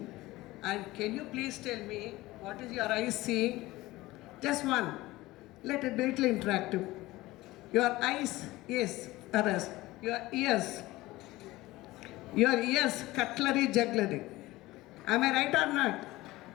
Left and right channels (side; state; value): right; quieter; 18.7 dB